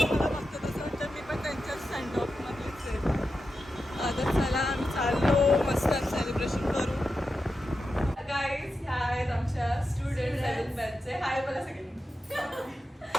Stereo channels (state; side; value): normal; both; correlation 0.90